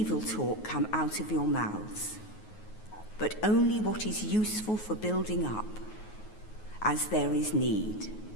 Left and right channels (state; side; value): late; right; 9.4 ms